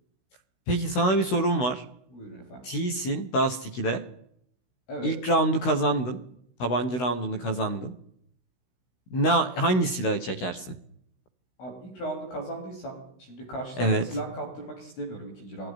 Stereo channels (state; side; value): late; right; 16 ms